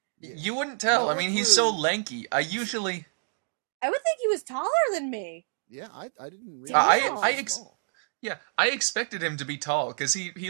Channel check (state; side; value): silent; left; digital silence